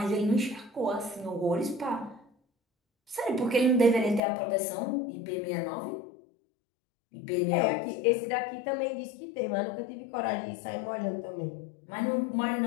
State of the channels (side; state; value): right; drops out; at 4.2 s